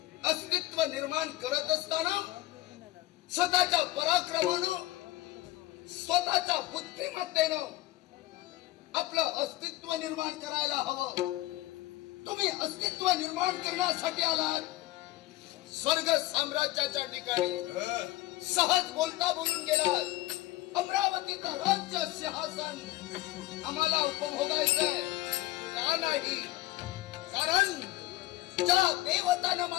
अस्तित्व निर्माण करत असताना स्वतःच्या पराक्रमानं, स्वतःच्या बुद्धिमत्तेनं आपलं अस्तित्व निर्माण करायला हवं. तुम्ही अस्तित्व निर्माण करण्यासाठी आलात स्वर्ग साम्राज्याच्या ठिकाणी. सहज बोलता बोलून गेलात. अमरावतीचं राज्य सिंहासन आम्हाला उपभोगायचंय का नाही? कारण ज्या देवतानं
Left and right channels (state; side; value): quieter; right; 17.9 dB